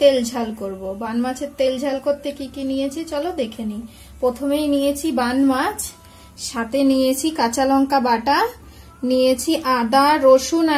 झाल करब। बान माछेर तेल झाल करते की नियेछि चलो देखे नी। प्रथमेई नियेछि बान माछ, साथे नियेछि काँचा लंका बाटा, नियेछि आदा रसुन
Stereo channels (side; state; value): both; identical; correlation 1.00